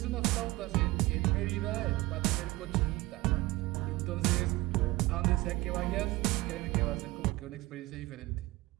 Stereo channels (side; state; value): left; quieter; 20.5 dB